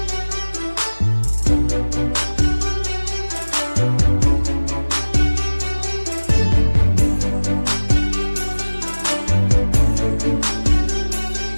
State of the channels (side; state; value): both; inverted; correlation -1.00